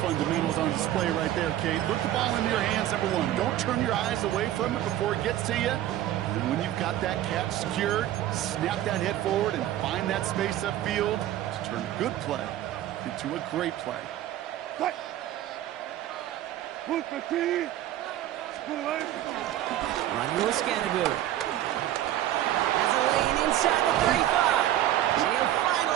on display right there, Kate. Put the ball in your hands, number 1. Don't turn your eyes away from it before it gets to you. And when you've got that catch secured, snap that head forward and find that space upfield to turn a good play into a great play. Running with Scattergood. Has a lane inside the 35. And he'll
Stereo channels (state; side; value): quieter; left; 13.0 dB